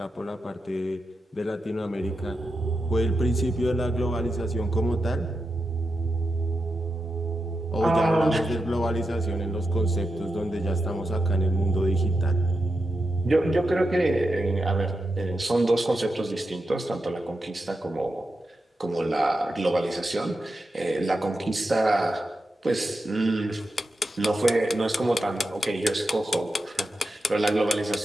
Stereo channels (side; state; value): both; normal; correlation 0.88